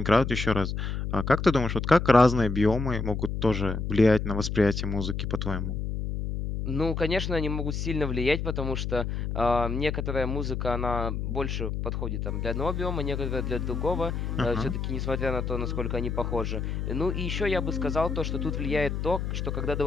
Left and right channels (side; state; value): left; noise; hum, 3 dB below the sound